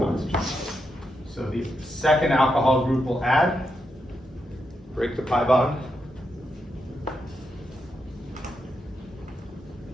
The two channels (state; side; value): normal; both; correlation 0.83